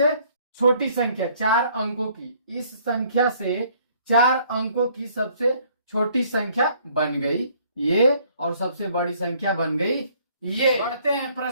छोटी संख्या 4 अंकों की। इस संख्या से 4 अंकों की सबसे छोटी संख्या बन गई ये, और सबसे बड़ी संख्या बन गई ये। बढ़ते हैं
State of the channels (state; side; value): inverted; both; correlation -0.61